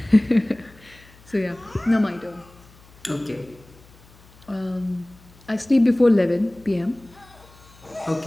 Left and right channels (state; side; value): noise; left; hum, 25 dB below the sound